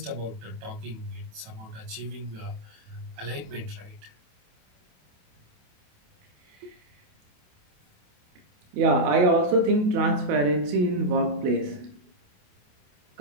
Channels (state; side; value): late; left; 27 ms